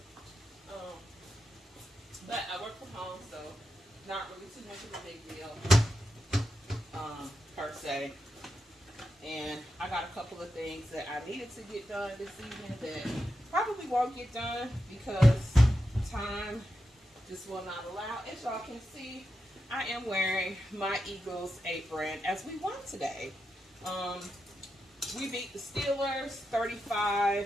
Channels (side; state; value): both; normal; correlation 0.88